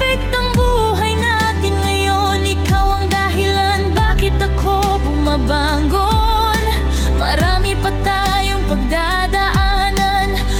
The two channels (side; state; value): both; identical; correlation 1.00